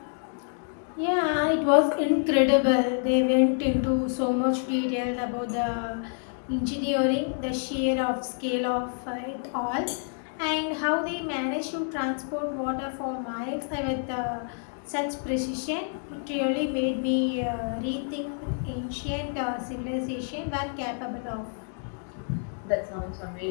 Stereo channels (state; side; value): silent; right; 57 dB below the other